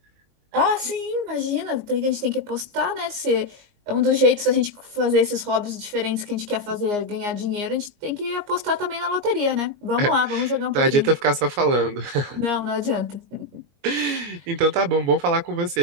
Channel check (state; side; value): late; left; 21 ms